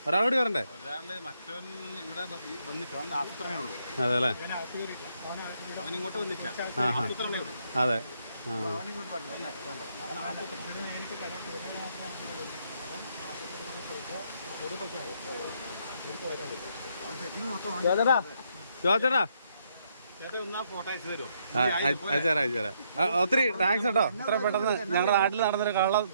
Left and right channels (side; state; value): both; inverted; correlation -0.73